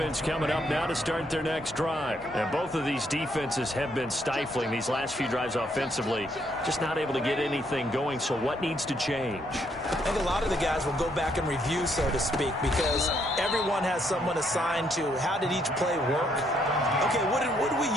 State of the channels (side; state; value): both; normal; correlation 0.72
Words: coming up now to start their next drive. And both of these defenses have been stifling these last few drives offensively. Just not able to get anything going, so what needs to change? I think a lot of the guys will go back and review, so to speak, because everyone has someone assigned to how did each play work. Okay, what did we